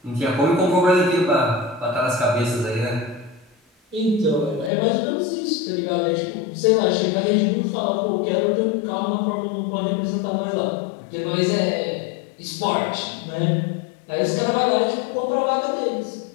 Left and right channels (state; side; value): drops out; right; at 4.7 s